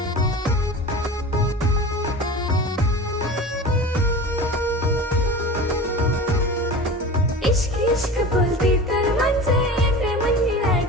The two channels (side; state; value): both; normal; correlation 0.33